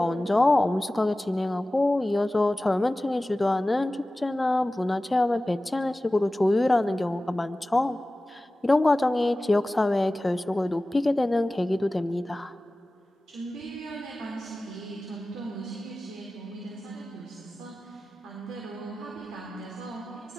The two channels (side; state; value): both; normal; correlation 0.97